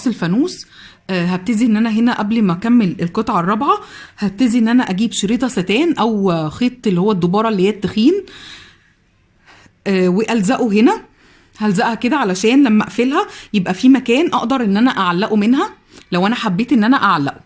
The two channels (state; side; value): identical; both; correlation 1.00